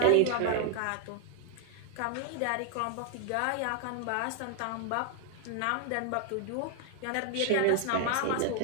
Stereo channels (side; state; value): both; different; correlation 0.00